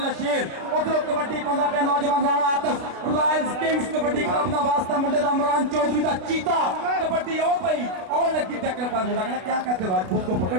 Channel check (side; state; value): left; late; 33 ms